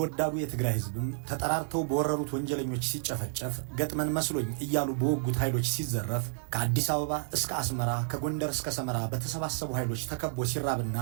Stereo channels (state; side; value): silent; left; 57 dB below the other